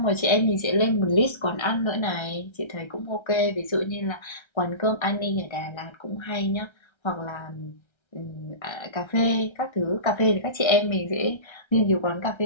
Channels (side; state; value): right; late; 1.3 ms